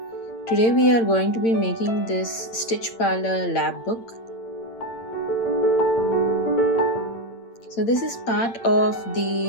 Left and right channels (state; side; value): late; right; 8.8 ms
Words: Today we are going to be making this Stitch Parlour lab book. So this is part of